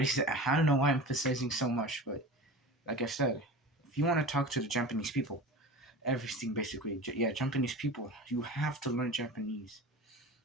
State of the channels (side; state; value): both; normal; correlation 0.34